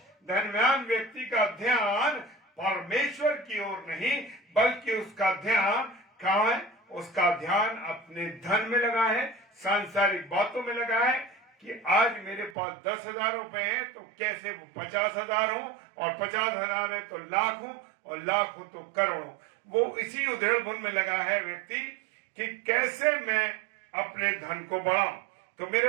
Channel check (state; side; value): drops out; left; at 12.6 s